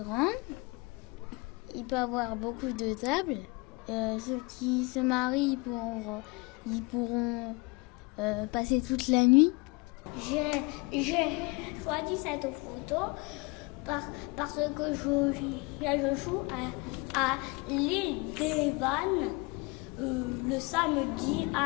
Il peut y avoir beaucoup de tables. Ceux qui se marient, ils pourront passer toute la nuit. J'ai choisi cette photo parce que je joue à l'île des Vannes le samedi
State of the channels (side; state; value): right; quieter; 26.8 dB